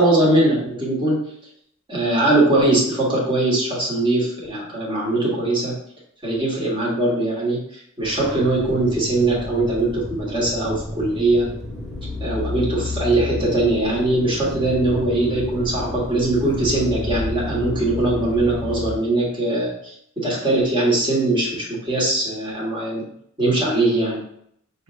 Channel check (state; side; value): normal; both; correlation 0.45